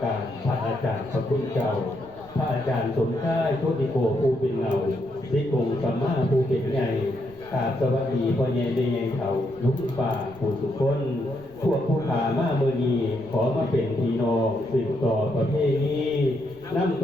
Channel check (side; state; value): right; noise; rumble, 23 dB below the sound